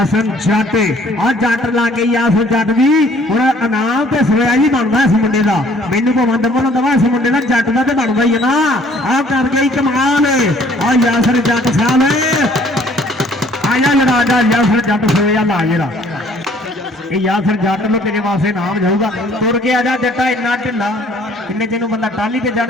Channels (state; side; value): normal; both; correlation 0.58